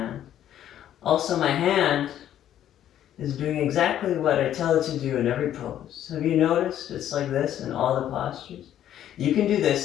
Also, my hand is doing exactly what I tell it to do in every pose. Have you noticed it's like this in all the postures? You can do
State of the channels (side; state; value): right; quieter; 11.2 dB